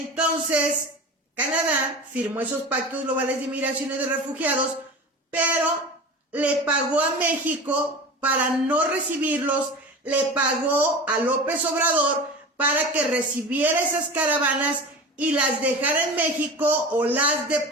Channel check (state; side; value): normal; both; correlation 0.33